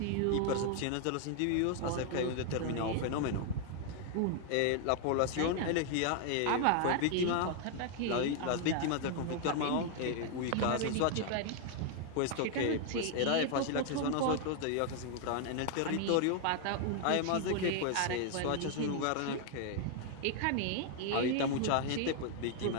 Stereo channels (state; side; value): different; both; correlation 0.00